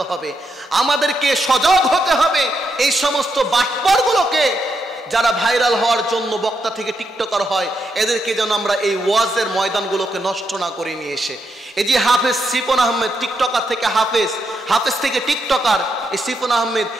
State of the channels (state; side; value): normal; both; correlation 0.81